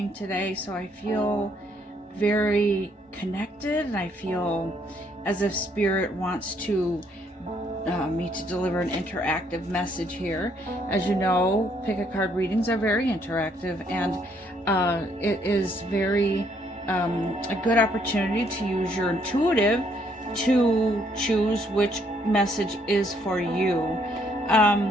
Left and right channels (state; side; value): normal; both; correlation 0.69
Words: today, so I feel very connected and I feel as if Spirit wants me to deliver an interactive message here. As you know, pick a card readings are very interactive, and it is very a good opportunity to use your intuitive to choose which message is for you.